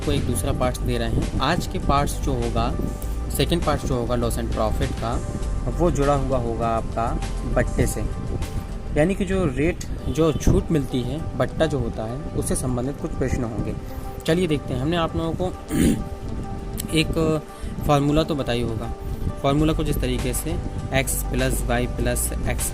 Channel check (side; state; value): both; identical; correlation 1.00